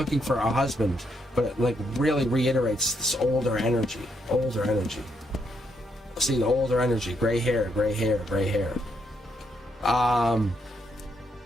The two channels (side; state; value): both; normal; correlation 0.76